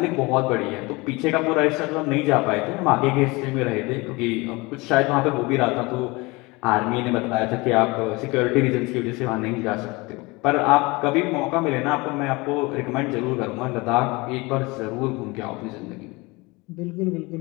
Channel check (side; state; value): right; quieter; 24.5 dB